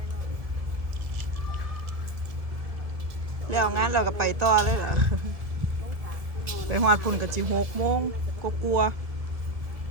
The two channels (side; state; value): left; late; 1.6 ms